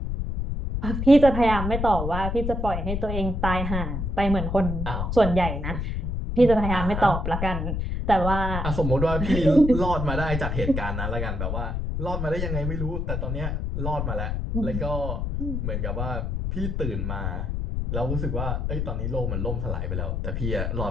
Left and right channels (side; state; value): left; noise; rumble, 2 dB below the sound